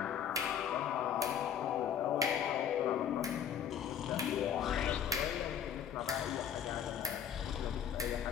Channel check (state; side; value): quieter; right; 8.6 dB